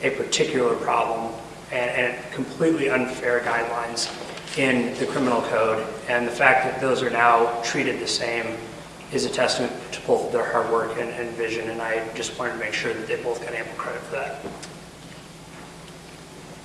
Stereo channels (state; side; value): identical; both; correlation 1.00